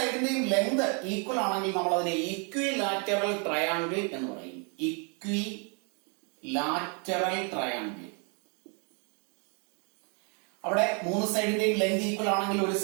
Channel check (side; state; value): left; quieter; 36.8 dB